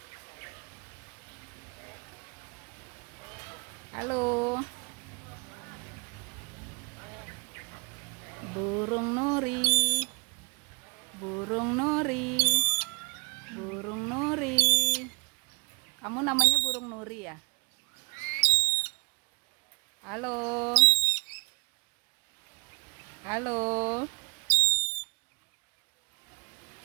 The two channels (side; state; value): left; quieter; 26.8 dB